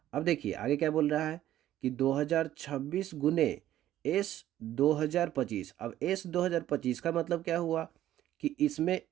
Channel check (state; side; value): quieter; left; 12.9 dB